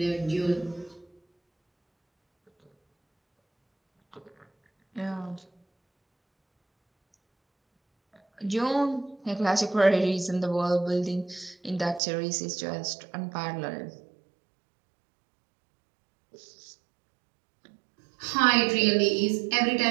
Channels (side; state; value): left; drops out; at 12.0 s